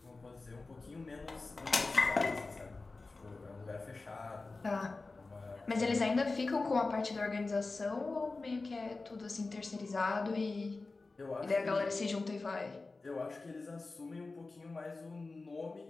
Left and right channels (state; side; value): quieter; right; 3.6 dB